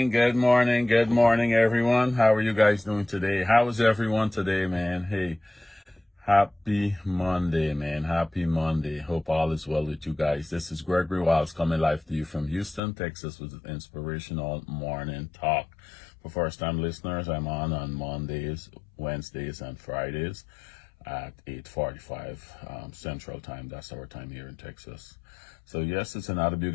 everyone. How are you guys doing today? How is everyone today, man? Hey, happy Monday, man. Happy Monday. Hope all is well with you guys. This is Gregory Wiles coming live to you from Houston, Texas with inspirational morning talk. For first-time listeners, I'm on Mondays, Wednesdays, and Fridays at 8:45 Central Time. That's our time here in Texas. So yes, it's another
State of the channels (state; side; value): drops out; right; at 12.8 s